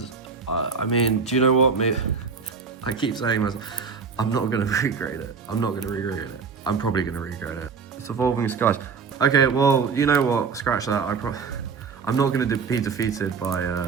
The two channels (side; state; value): left; quieter; 5.5 dB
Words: I mean, do you know what? Maybe I keep saying myself, I'm not going to regrade it. I'm not going to regrade it. I'm probably going to regrade it. It's Evolving Skies. Okay, well, you know what? Scratch that. I'm not going to be defeated by